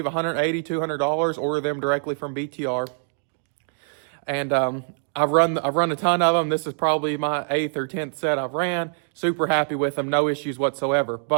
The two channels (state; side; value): silent; left; digital silence